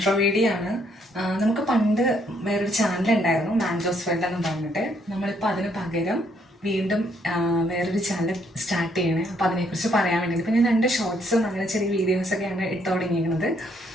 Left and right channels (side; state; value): both; normal; correlation 0.70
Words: വീഡിയോ ആണ്. നമുക്ക് പണ്ട് വേറൊരു ചാനൽ ഉണ്ടായിരുന്നു, മാൻജോസ് വേൾഡ് എന്ന് പറഞ്ഞിട്ട്. നമ്മളിപ്പോൾ അതിന് പകരം വീണ്ടും വേറൊരു ചാനൽ സ്റ്റാർട്ട് ചെയ്യണേ. അപ്പോൾ അതിനെക്കുറിച്ച് പറയാൻ വേണ്ടി ഇപ്പം ഞാൻ 2 ഷോർട്സും അങ്ങനെ ചെറിയ വീഡിയോസൊക്കെയാണ് ഇട്ട് തുടങ്ങിയിരിക്കുന്നത്.